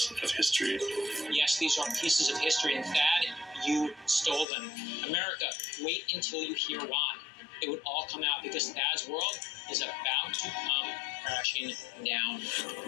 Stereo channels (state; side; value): drops out; right; at 4.5 s